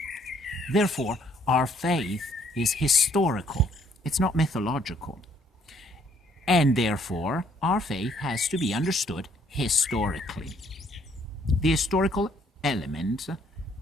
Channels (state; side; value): normal; both; correlation 0.65